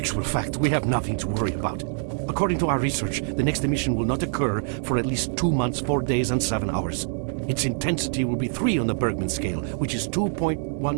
actual fact, we have nothing to worry about. According to our research, the next emission will not occur for at least 2 months, 4 days, and 7 hours. Its intensity will be 3 on the Bergman scale, which is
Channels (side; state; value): left; silent; 62 dB below the other